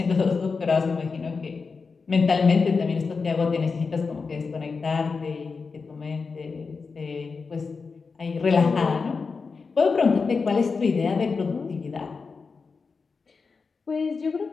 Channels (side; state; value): right; quieter; 4.8 dB